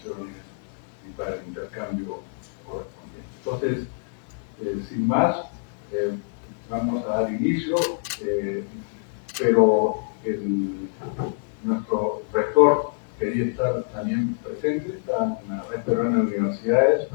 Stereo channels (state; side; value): silent; right; digital silence